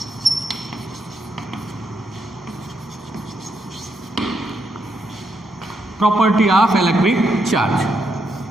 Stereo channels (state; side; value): normal; both; correlation 0.79